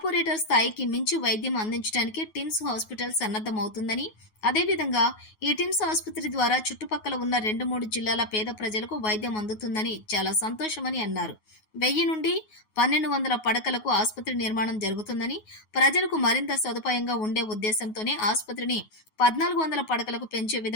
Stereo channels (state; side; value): late; right; 9.4 ms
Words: స్థాయికి మించి వైద్యం అందించడానికి టిమ్స్ హాస్పిటల్ సన్నద్దమవుతుందని, అదేవిధంగా ఈ టిమ్స్ ఆసుపత్రి ద్వారా చుట్టుపక్కల ఉన్న 2-3 జిల్లాల పేద ప్రజలకు వైద్యం అందుతుందని చాలా సంతోషమని అన్నారు. 1000 నుండి 1200 పడకలకు ఆసుపత్రి నిర్మాణం జరుగుతుందని, ప్రజలకు మరింత సదుపాయంగా ఉండే ఉద్దేశంతోనే ఆసుపత్రిని 1400 పడకలకు పెంచే